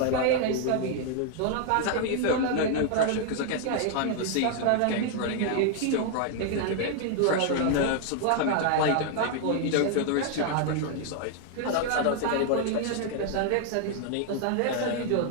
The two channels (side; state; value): both; different; correlation 0.00